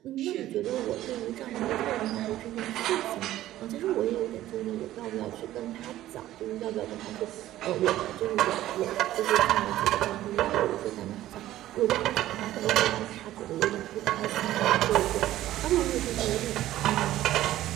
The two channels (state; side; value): quieter; left; 14.2 dB